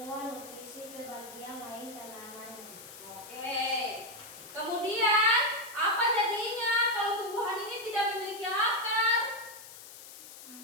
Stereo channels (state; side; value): noise; left; hiss, 15 dB below the sound